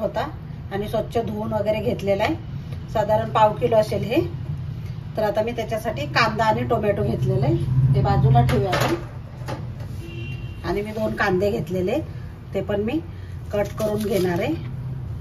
आणि स्वच्छ धुवून वगैरे घेतलेला आहे. साधारण पाव किलो असेल हे. तर आता मी त्याच्यासाठी कांदा आणि टोमॅटो घेतलेले आहे, ते बाजूला ठेवूया आपण. आणि मी 2 कांदे घेतलेले, ते पण मी कट करून घेणार आहे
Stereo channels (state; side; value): identical; both; correlation 1.00